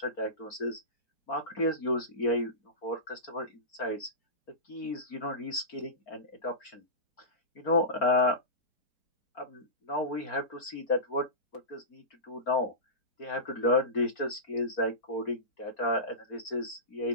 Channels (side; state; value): right; late; 4.4 ms